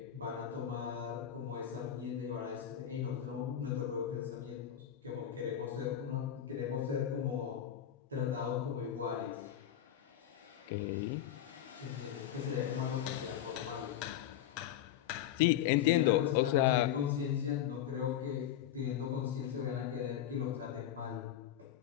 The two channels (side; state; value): right; quieter; 10.8 dB